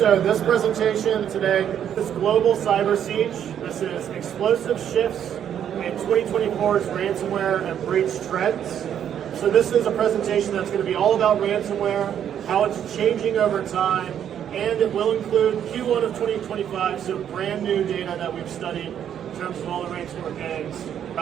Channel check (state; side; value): quieter; left; 9.4 dB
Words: this presentation today is Global Cyber Siege. This is explosive shifts in 2024's ransomware and breach trends. So this is a presentation that's going to be all about ransomware, how it's changing over time, and it will include Q1 of 2025, so brand new data that we've studied in terms of all the ransomware gangs